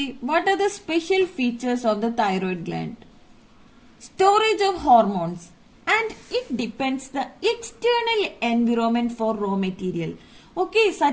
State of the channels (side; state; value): both; identical; correlation 1.00